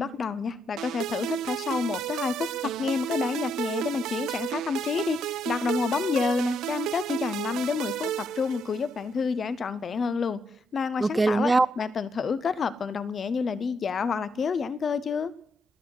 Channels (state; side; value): normal; both; correlation 0.77